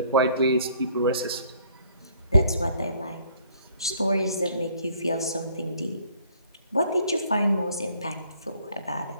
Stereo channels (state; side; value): inverted; both; correlation -0.61